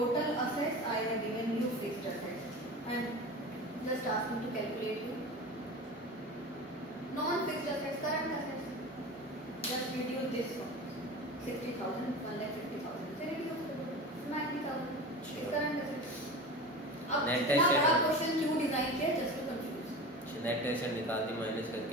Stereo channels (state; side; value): normal; both; correlation 0.31